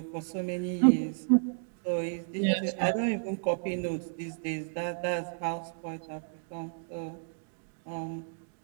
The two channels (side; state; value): left; silent; digital silence